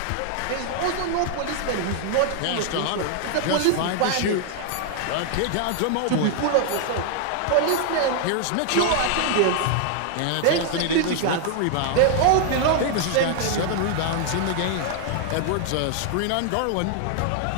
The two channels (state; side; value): different; both; correlation 0.00